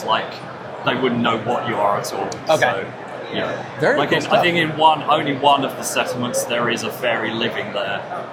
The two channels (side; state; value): both; identical; correlation 1.00